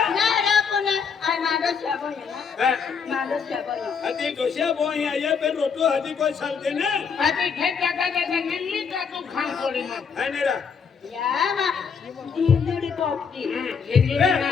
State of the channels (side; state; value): right; quieter; 6.1 dB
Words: ना रे कोने आई मादो छाबो ना मादो छाबो अति डोसिया बोई आये पे रोटू हदी कोई साल देने अभी खेत जगह जगह निम्मी का तू खान पड़ी मत है नेरा या ना दिंदुडी पोपटी